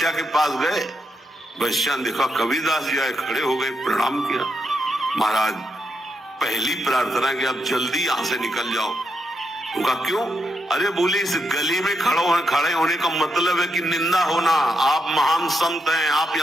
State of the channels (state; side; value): normal; both; correlation 0.81